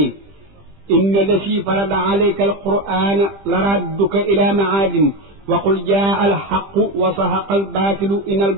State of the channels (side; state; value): left; late; 20 ms